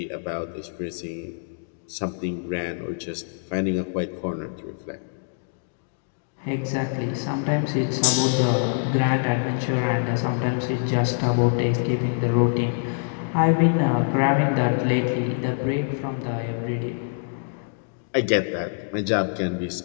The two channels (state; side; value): silent; right; digital silence